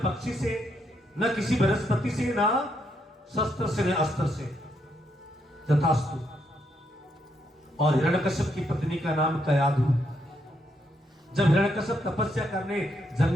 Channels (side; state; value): both; normal; correlation 0.77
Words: पक्षी से, न किसी वनस्पति से, न शस्त्र से न अस्त्र से, तथास्तु। और हिरण्यकश्यप की पत्नी का नाम कयाधु। जब हिरण्यकश्यप तपस्या करने